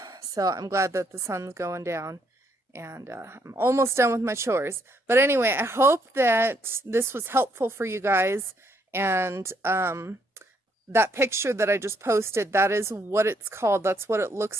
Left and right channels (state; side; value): normal; both; correlation 0.72